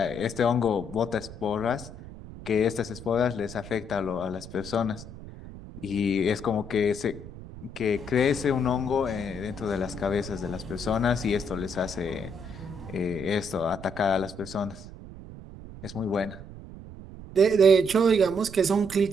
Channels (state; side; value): noise; right; rumble, 14 dB below the sound